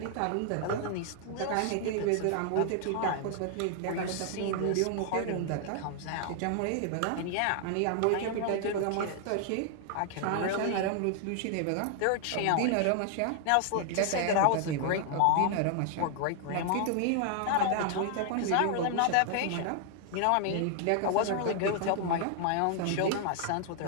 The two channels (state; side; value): different; both; correlation 0.00